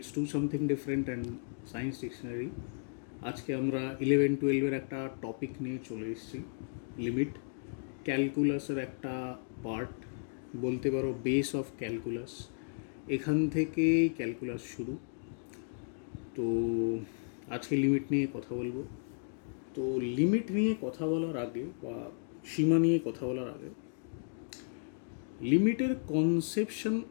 Do Something Different and Science Dictionary. আজকে আমরা 11-12 একটা topic নিয়ে চলে এসেছি, লিমিট। ক্যালকুলাসের একটা পার্ট, বলতে পারো বেস অফ ক্যালকুলাস। এখান থেকেই ক্যালকুলাস শুরু। তো আজকে লিমিট নিয়ে কথা বলবো। তো লিমিট নিয়ে কথা বলার আগে বা সীমা নিয়ে কথা বলার আগে, লিমিটের কনসেপশন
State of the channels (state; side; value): silent; right; digital silence